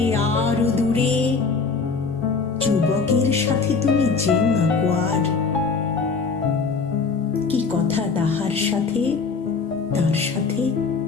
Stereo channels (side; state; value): right; quieter; 4.8 dB